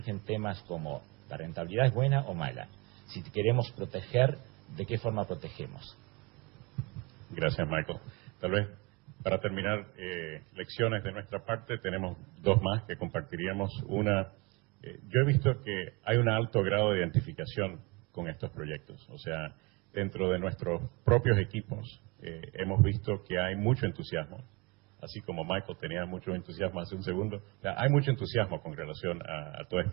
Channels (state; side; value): quieter; left; 27.2 dB